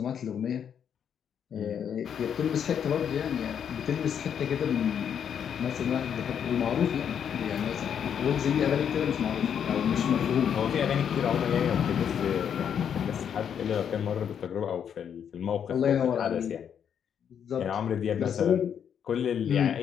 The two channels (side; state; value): right; quieter; 8.3 dB